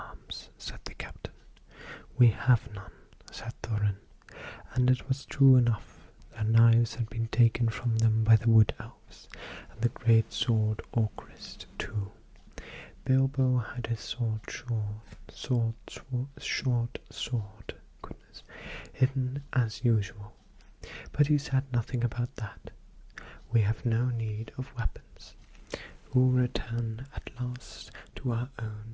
said the captain. "We have none," said Thorin, and it was true enough. Their knives had been taken from them by the wood elves, and the great sword Orcrist too. Bilbo had his short sword, hidden as usual, but he said nothing about that. "We have no need of weapons. We'll return at last to our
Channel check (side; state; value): both; identical; correlation 1.00